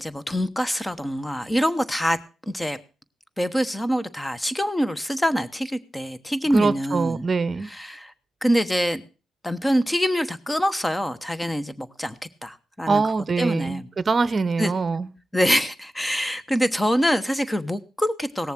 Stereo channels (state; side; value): normal; both; correlation 0.95